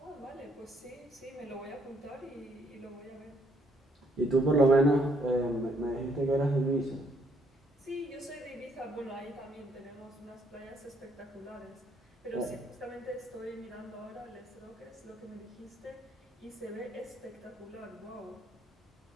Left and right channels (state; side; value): normal; both; correlation 0.70